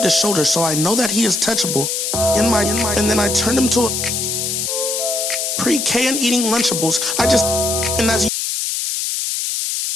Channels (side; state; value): left; noise; hiss, 1 dB below the sound